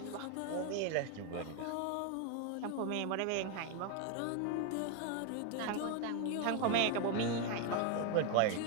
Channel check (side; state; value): both; different; correlation 0.01